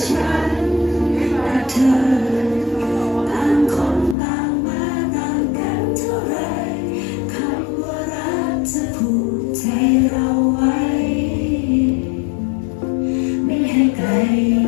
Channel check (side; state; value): right; drops out; at 4.2 s